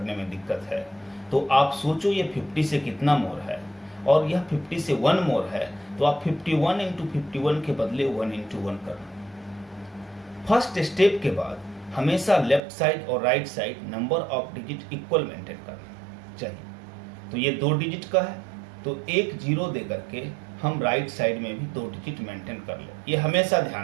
में दिक्कत है, तो आप सोचो ये 50 से कितना मोर है, और यह 50 से 1 मोर है, तो आप 51 into 51 के बदले 1 into 1 कर लो। फर्स्ट स्टेप के बाद हमेशा लेफ्ट साइड और right side number of digit equal maintain करना चाहिए। तो ये 2 डिजिट का है, तो एक 0 दे करके हम राइट साइड में भी 2 डिजिट मेंटेन कर ले। ये हमेशा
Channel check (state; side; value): drops out; left; at 12.6 s